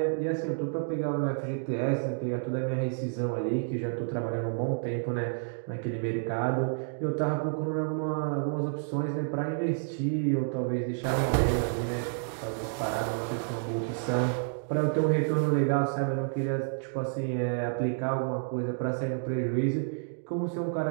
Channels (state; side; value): silent; left; digital silence